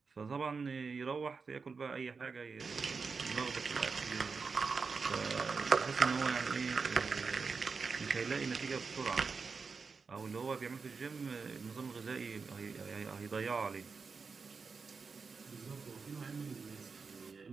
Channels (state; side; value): quieter; left; 4.9 dB